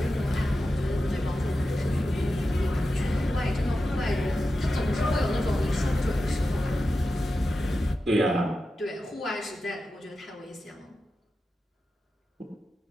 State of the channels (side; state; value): both; normal; correlation 0.92